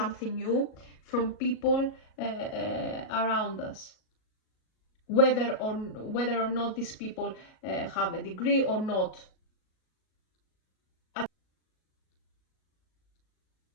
new from people around us. Whether or not these people have a degree or not.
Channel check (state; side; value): late; right; 37 ms